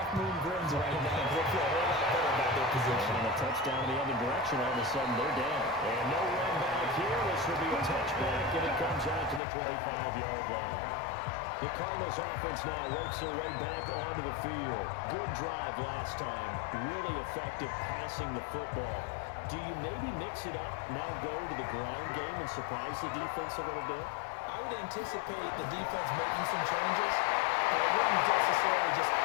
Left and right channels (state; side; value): drops out; right; at 9.4 s